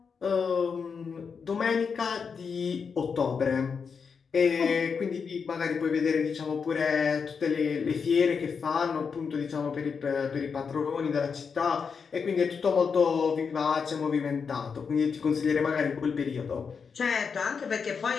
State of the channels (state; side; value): quieter; right; 5.9 dB